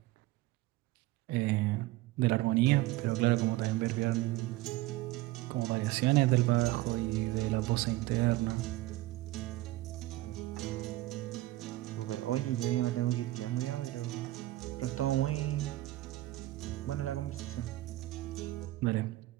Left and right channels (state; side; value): quieter; left; 17.7 dB